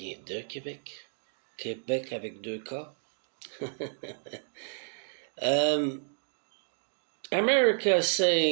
de Québec, Québec avec deux K. America is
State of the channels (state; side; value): silent; left; digital silence